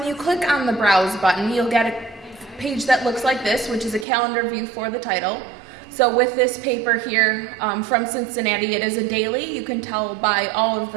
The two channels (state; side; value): drops out; left; at 4.0 s